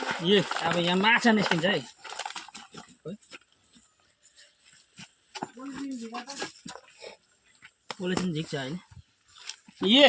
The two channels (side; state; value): both; identical; correlation 1.00